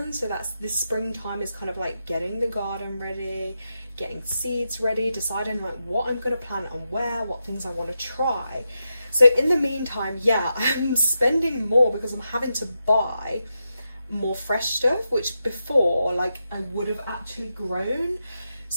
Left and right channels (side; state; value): both; inverted; correlation -0.88